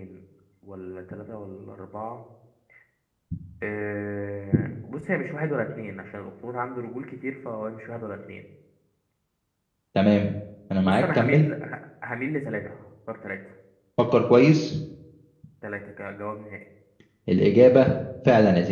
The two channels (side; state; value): both; identical; correlation 1.00